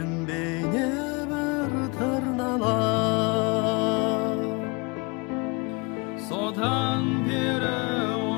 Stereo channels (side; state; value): right; quieter; 29.6 dB